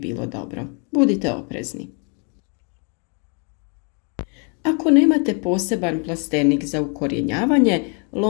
dobro. Budite oprezni. Ako nemate poseban plastenik za ukorjenjavanje,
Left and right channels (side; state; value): right; quieter; 36.2 dB